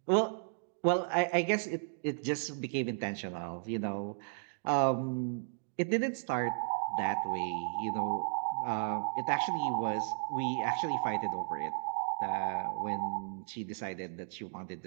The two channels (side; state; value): left; silent; digital silence